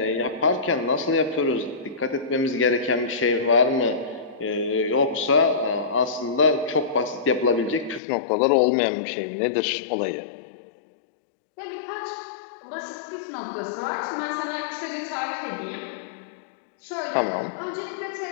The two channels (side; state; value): right; drops out; at 8.0 s